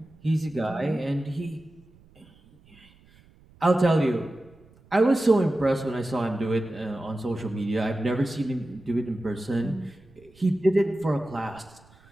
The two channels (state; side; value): noise; right; rumble, 28 dB below the sound